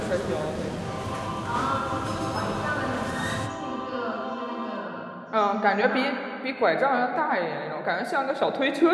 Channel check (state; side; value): identical; both; correlation 1.00